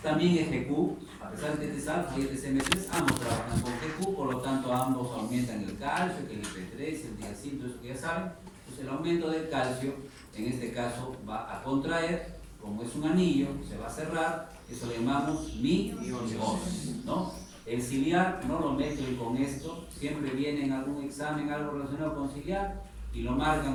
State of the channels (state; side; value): identical; both; correlation 1.00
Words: también es GQ, a pesar de que este es alfa y este es M3, ambos trabajan con GQ, por lo tanto ambos aumentan el calcio, que el IP3, el diacil, todo eso que ya saben. Entonces el aumento del calcio, en este caso, va a contraer, como es un anillo, se va a cerrar, eso le llamamos miosis, ¿no? El ciliar no lo meto y con esto, siempre viene en algún examen algo relacionado con ciliar y lo